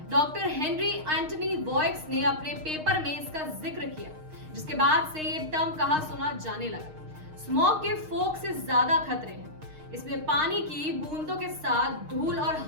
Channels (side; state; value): left; late; 6.5 ms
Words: डॉक्टर हेनरी एंटनी वॉयक्स ने अपने पेपर में इसका जिक्र किया, जिसके बाद से ये टर्म कहा सुना जाने लगा। स्मोक के फॉग से ज्यादा खतरे हैं। इसमें पानी की बूंदों के साथ धूल और